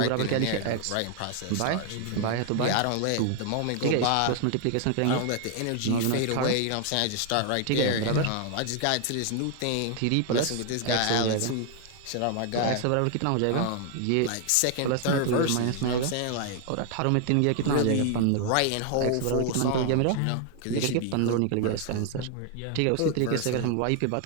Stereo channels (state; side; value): different; both; correlation 0.00